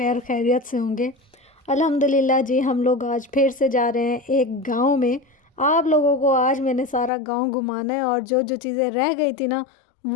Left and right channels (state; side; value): drops out; right; at 7.1 s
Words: خیریت سے ہوں گے۔ الحمدللہ جی، ہم لوگ آج پھر سے جا رہے ہیں ایک گاؤں میں۔ آپ لوگوں کو آج میں نے سارا گاؤں گھمانا ہے اور جو جو چیزیں رہ گئی تھی نا،